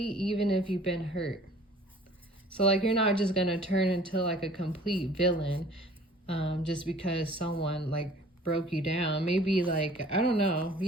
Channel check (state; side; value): normal; both; correlation 0.50